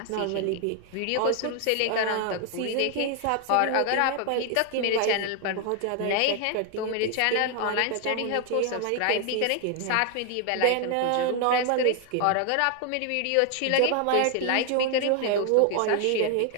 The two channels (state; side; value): different; both; correlation 0.00